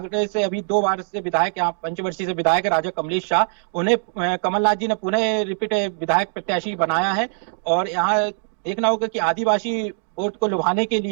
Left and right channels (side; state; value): left; silent; 60 dB below the other